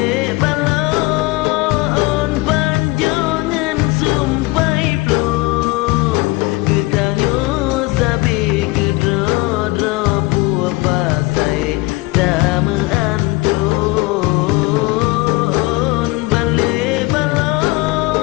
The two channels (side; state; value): right; quieter; 22.5 dB